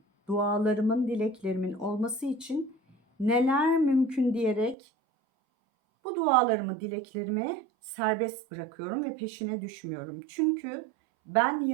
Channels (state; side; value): drops out; left; at 4.8 s